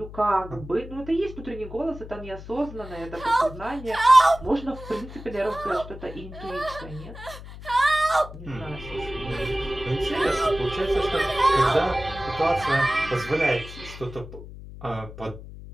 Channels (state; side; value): noise; left; hum, 14 dB below the sound